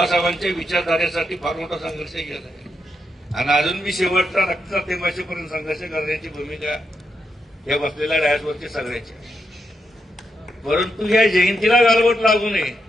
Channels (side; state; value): both; normal; correlation 0.82